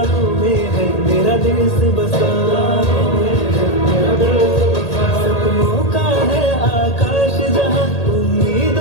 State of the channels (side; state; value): right; late; 1.8 ms